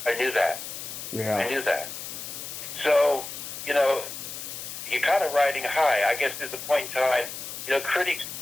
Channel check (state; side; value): noise; left; hiss, 8 dB below the sound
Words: I knew that. Yeah. I knew that. So, you're kind of riding high. I guess there's a point in time,